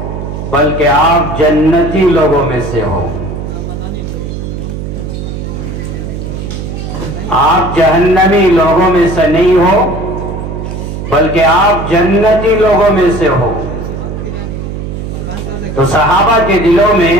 بلکہ آپ جنتی لوگوں میں سے ہو. آپ جہنمی لوگوں میں سے نہیں ہو بلکہ آپ جنتی لوگوں میں سے ہو. تو صحابہ کے دلوں میں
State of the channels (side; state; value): right; noise; hum, 6 dB below the sound